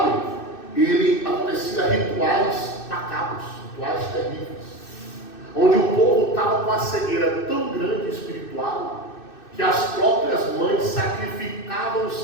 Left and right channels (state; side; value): late; right; 2.6 ms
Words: ele acontecia rituais macabros, rituais terríveis, onde o povo estava com a cegueira tão grande espiritual, que as próprias mães sacrificavam os